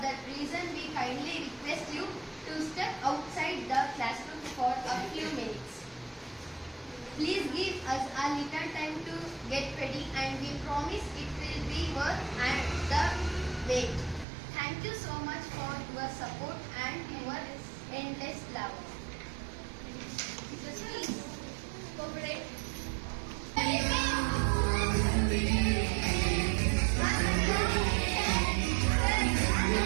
that reason we kindly request you to step outside the classroom for a few minutes. Please give us a little time to get ready, and we promise it will be worth the wait. Thank you so much for your support and your endless love. Please cooperate.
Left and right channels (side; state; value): left; drops out; at 14.2 s